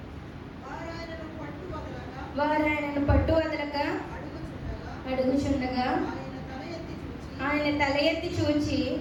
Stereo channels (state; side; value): identical; both; correlation 1.00